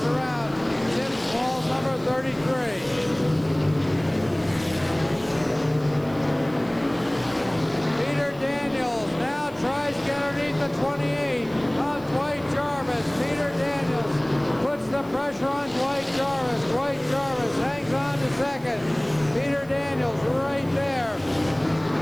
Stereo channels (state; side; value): noise; right; hiss, 25 dB below the sound